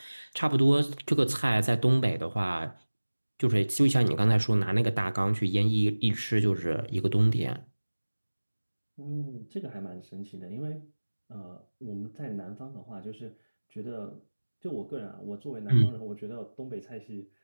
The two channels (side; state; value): both; inverted; correlation -1.00